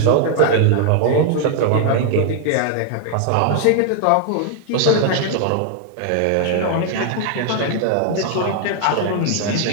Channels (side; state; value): both; different; correlation 0.00